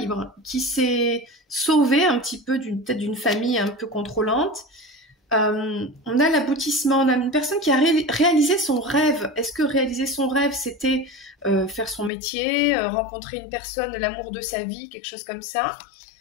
s'est sauvée un petit peu peut-être d'une famille un peu contrôlante. On a l'aboutissement, on a une personne qui a réalisé son rêve. Est-ce que réaliser son rêve, c'était faire son métier, rencontrer une personne, l'amour de sa vie, quelque chose comme ça?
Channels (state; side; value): drops out; right; at 12.1 s